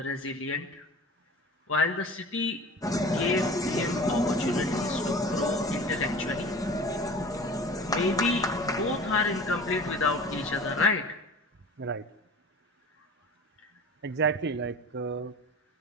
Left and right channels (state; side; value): normal; both; correlation 0.40